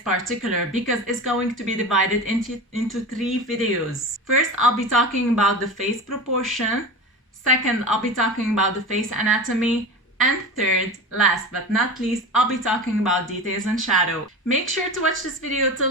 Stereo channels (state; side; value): normal; both; correlation 0.29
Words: because it's going to be divided into 3 videos. First, I'll be talking about the face proportion. Second, I'll be talking about the face anatomy. And third, last but not least, I'll be talking about details and shadow. Make sure to watch this video